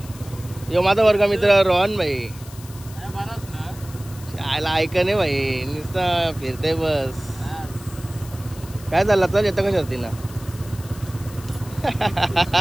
यो माझा वर्ग मित्र रोहन भाई. आयला ऐका नाही भाई नुसतं फिरते बस. काय झालं चल येतं का शर्तीला.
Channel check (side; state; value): left; noise; hiss, 19 dB below the sound